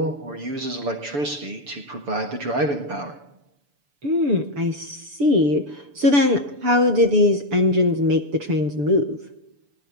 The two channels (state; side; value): late; left; 6.9 ms